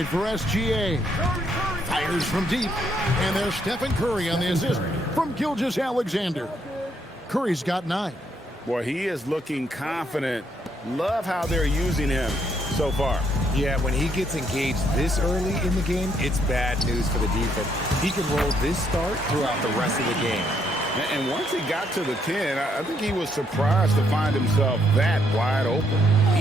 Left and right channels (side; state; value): both; normal; correlation 0.73